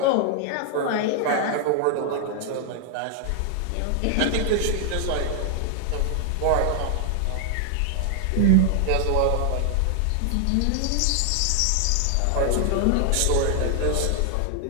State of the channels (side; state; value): both; different; correlation 0.00